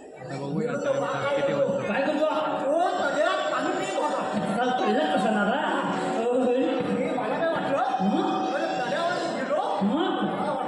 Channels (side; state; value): both; identical; correlation 1.00